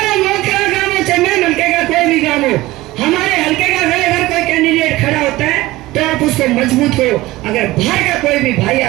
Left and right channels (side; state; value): left; quieter; 18.5 dB